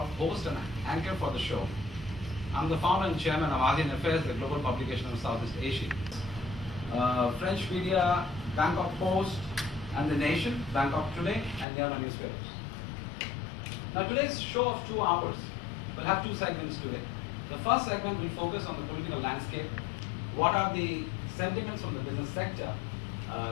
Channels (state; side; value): drops out; right; at 11.7 s